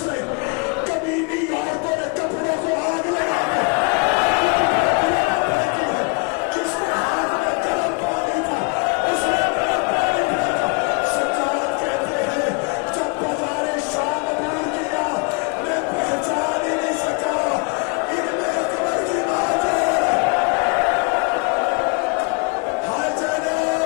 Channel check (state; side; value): quieter; right; 32.3 dB